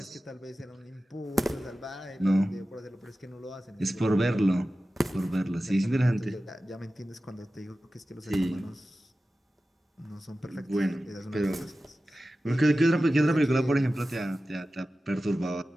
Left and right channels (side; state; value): both; normal; correlation 0.95